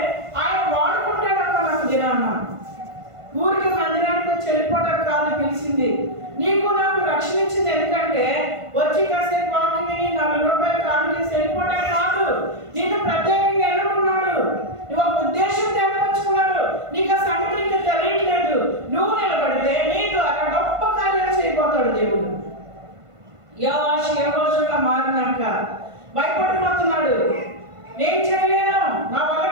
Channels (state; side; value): late; left; 1.5 ms